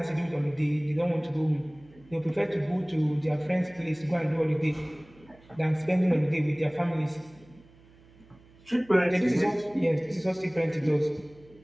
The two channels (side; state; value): right; noise; hum, 26 dB below the sound